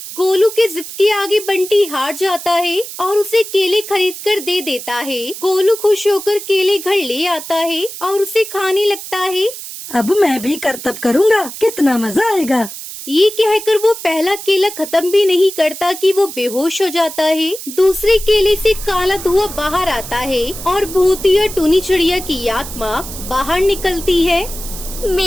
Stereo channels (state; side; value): noise; right; hiss, 11 dB below the sound